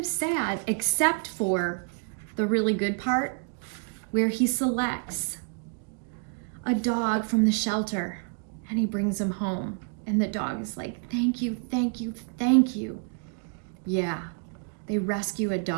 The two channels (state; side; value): quieter; left; 39.3 dB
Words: sad, except for the really good part where he selects a dog from the shelter and he brings him home. And the dog is like, thank you, thank you, thank you. Yeah, they rescue a